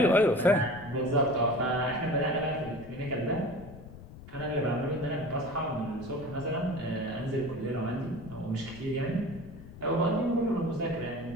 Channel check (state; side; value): noise; left; rumble, 16 dB below the sound